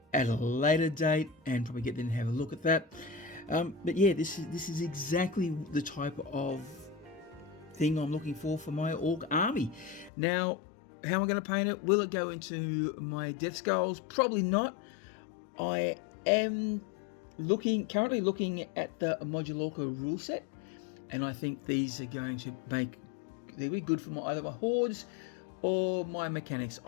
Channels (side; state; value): right; drops out; at 10.1 s